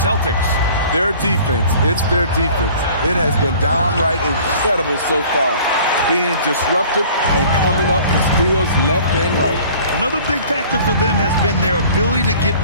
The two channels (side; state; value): both; inverted; correlation -0.49